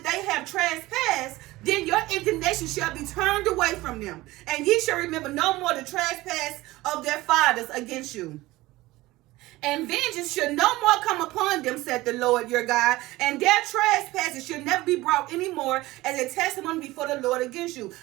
they have trespassed, then your indignation them. And ye shall remember no more the trespass of their fathers against you. And vengeance should no more come upon them, said the Lord your God, and their trespasses should never be brought any more as a testimony before the Lord against you.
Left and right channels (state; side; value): quieter; left; 18.9 dB